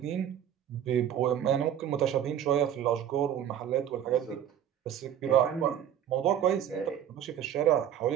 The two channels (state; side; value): quieter; left; 9.9 dB